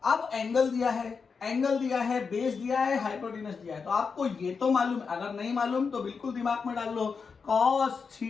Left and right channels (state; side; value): quieter; right; 5.4 dB